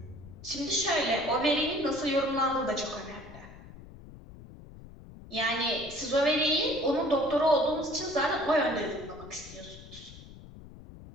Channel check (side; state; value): left; noise; rumble, 17 dB below the sound